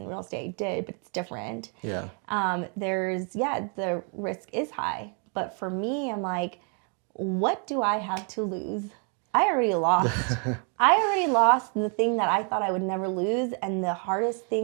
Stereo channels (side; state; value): left; quieter; 39.0 dB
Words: real estate I did, but it's different. Yeah. The risk is high, but for me, I'm like, what do I have to lose? I already lost. I already lost the thing that I thought I would never lose, and the hardest